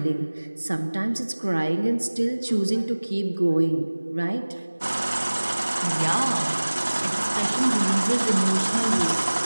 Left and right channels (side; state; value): both; inverted; correlation -1.00